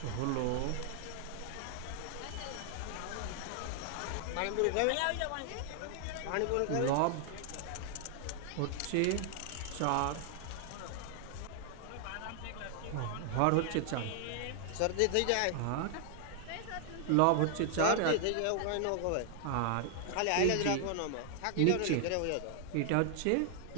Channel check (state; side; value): different; both; correlation 0.00